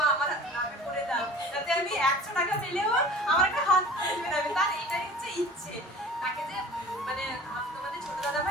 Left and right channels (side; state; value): both; normal; correlation 0.42